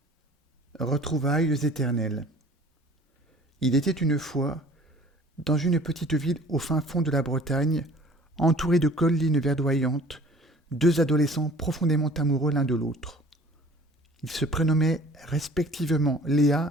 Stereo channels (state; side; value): normal; both; correlation 0.50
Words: Retrouvailles éternelles. Il était une fois, dans une petite ville au fin fond de la Bretagne, entourée de collines verdoyantes, deux adolescents profondément amoureux l'un de l'autre. Ils se prénommaient respectivement